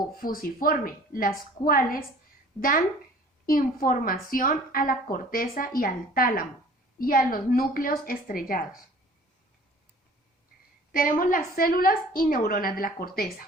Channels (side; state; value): both; normal; correlation 0.49